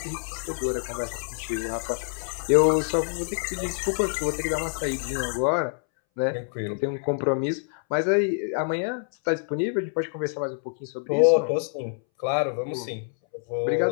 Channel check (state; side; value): silent; right; 61 dB below the other